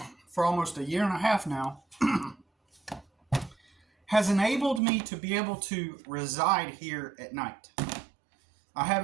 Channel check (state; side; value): drops out; left; at 4.8 s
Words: for almost a year and a half now has enabled me to be able to reside here at night. I have